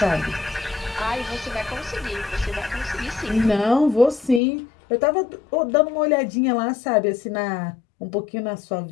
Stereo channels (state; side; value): drops out; right; at 4.4 s